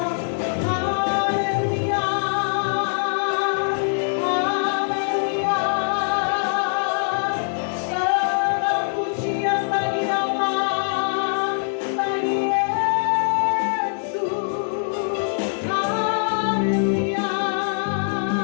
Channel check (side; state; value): right; silent; 64 dB below the other